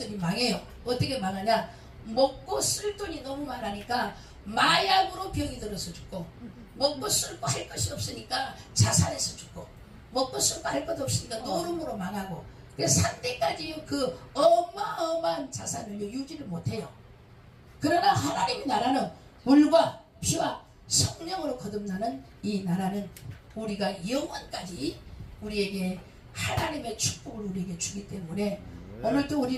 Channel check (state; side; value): identical; both; correlation 1.00